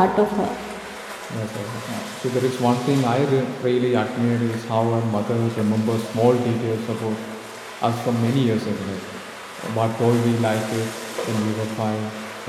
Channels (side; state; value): both; identical; correlation 1.00